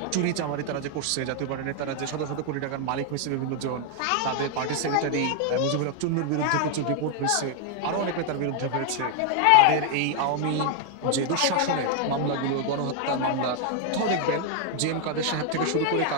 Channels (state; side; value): different; both; correlation 0.00